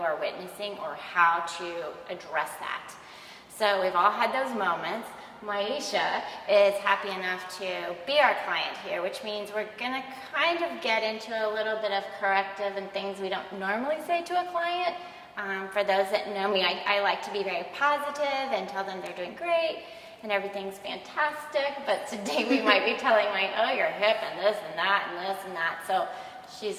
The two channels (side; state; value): both; identical; correlation 1.00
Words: witnessing or how to address that. So we've all had those moments. Maisha is happy enough to be our client here, which means we're gonna kind of get into a little bit of corrective and things we don't normally say to a client. For those that know me, I like to be very positive and tell them they're doing great and everything's fantastic, but today we might be telling oh, your hip and this and that and this and that. So